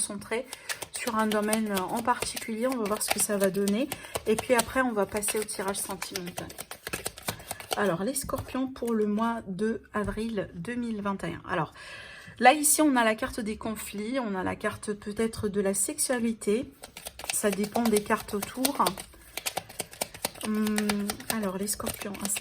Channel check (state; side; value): identical; both; correlation 1.00